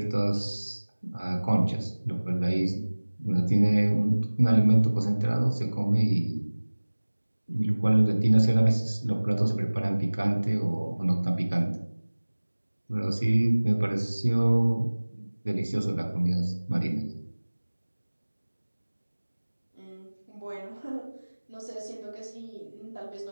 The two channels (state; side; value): inverted; both; correlation -1.00